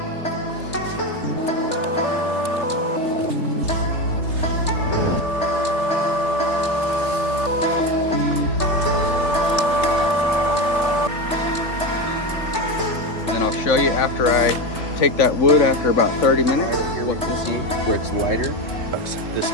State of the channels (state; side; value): late; right; 3.3 ms